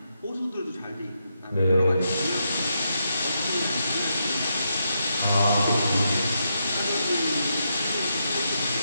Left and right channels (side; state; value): both; inverted; correlation -0.82